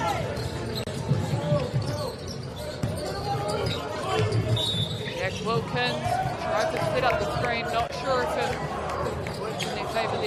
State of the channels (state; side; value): identical; both; correlation 1.00